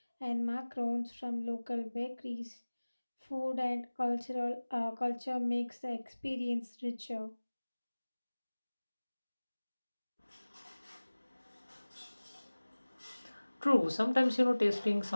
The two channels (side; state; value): both; inverted; correlation -1.00